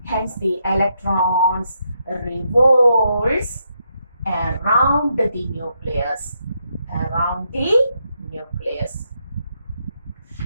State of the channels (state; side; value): inverted; both; correlation -0.79